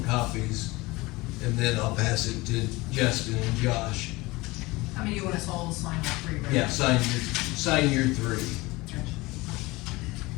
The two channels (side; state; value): right; quieter; 21.9 dB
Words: copies, and then I'll pass it to Justin and Josh. I mean, you want us all to sign all three, right? Yeah, sign your three. Gotcha.